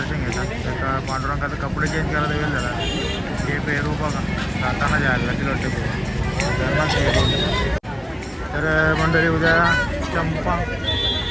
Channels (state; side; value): identical; both; correlation 1.00